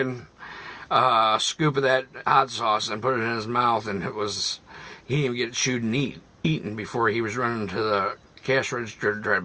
scoop of that hot sauce and put it in his mouth, and he didn't even get it chewed and eaten before he was running to the cash register to try to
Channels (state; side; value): identical; both; correlation 1.00